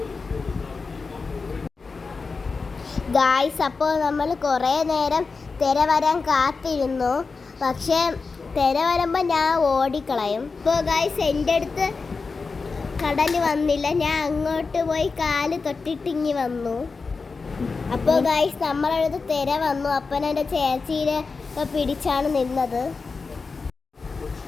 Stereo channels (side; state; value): right; quieter; 4.5 dB